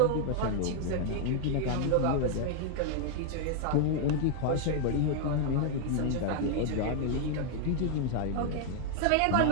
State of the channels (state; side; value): different; both; correlation 0.00